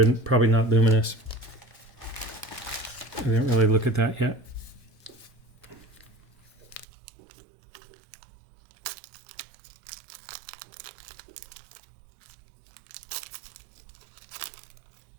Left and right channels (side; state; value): left; drops out; at 6.9 s